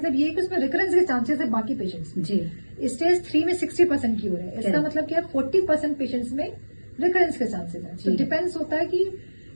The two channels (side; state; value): both; inverted; correlation -1.00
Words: ये है कि उसमें रिकरेंस के चांसेस है बाकी पेशेंट्स में। जी। स्टेज 3 में 60% क्योर है, इसका मतलब क्या है? 40% पेशेंट्स में रिकरेंस के चांसेस है। तो डिपेंड्स होता है कि